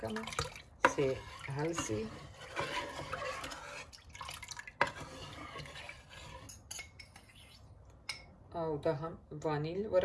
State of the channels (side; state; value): both; identical; correlation 1.00